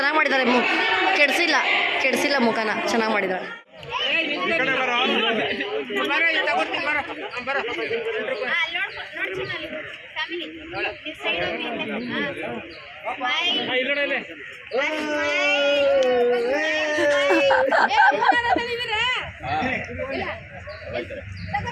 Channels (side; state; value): both; identical; correlation 1.00